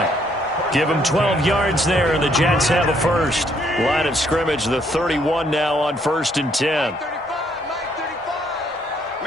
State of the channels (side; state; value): both; normal; correlation 0.69